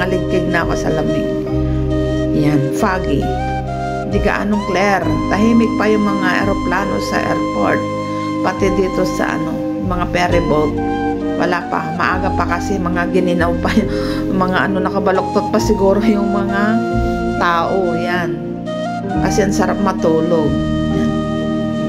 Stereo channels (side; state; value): both; identical; correlation 1.00